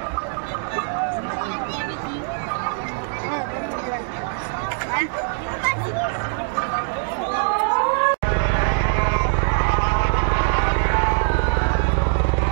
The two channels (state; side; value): silent; left; digital silence